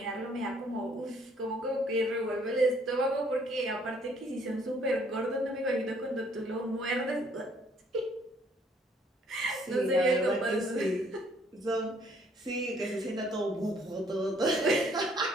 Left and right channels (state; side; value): normal; both; correlation 0.63